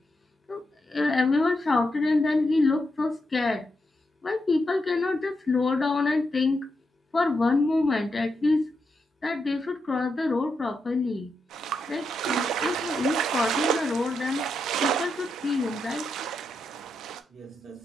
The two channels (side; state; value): both; normal; correlation 0.84